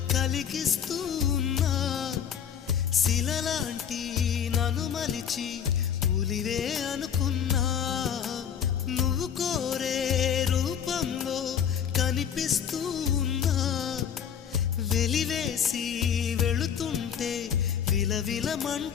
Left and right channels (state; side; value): quieter; right; 8.4 dB